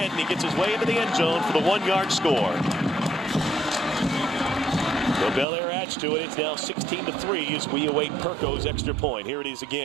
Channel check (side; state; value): left; drops out; at 5.5 s